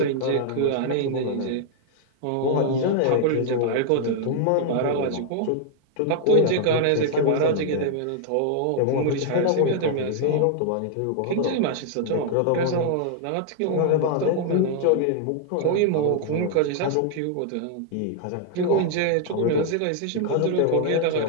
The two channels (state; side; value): different; both; correlation -0.01